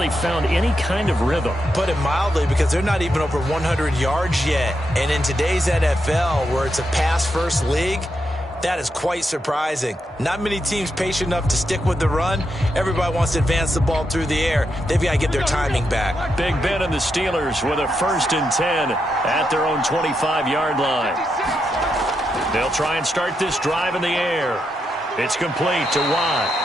found any kind of rhythm. Put it mildly, because they're not even over 100 yards yet. And in today's NFL, where it's a pass-first league, that is quite surprising. Not many teams patient enough to stick with the run. Everybody wants to advance the ball through the air. They've got to get their timing back. Big Ben and the Steelers with a 1st and 10 at their own 25-yard line. They'll try and start this drive in the air. It's complete to Watt.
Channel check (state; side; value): normal; both; correlation 0.83